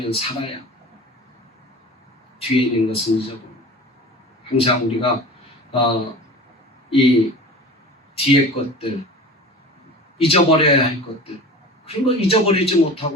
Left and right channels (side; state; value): both; normal; correlation 0.36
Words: 살아야 뒤에 있는 것은 잊어버리고 항상 우리가 이 뒤에 것들 잊어버려야 할 것들 그런 거 잊어버리지